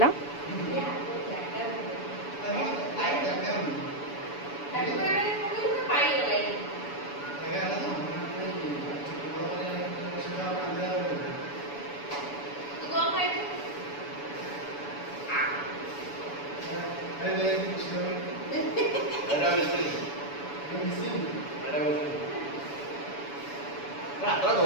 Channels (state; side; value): late; right; 7.0 ms